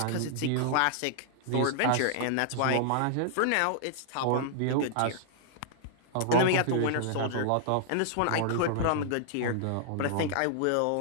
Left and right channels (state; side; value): different; both; correlation -0.01